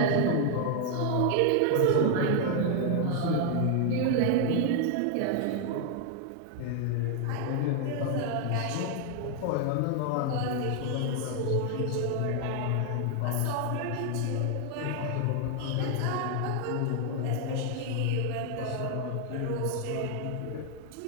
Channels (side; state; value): both; different; correlation 0.00